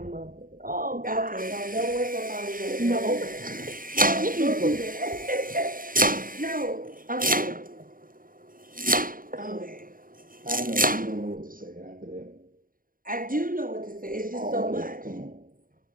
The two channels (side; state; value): left; late; 0.41 ms